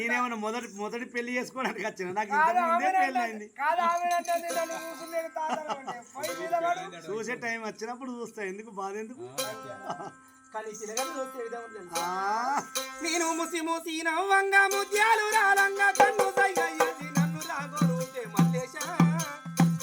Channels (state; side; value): identical; both; correlation 1.00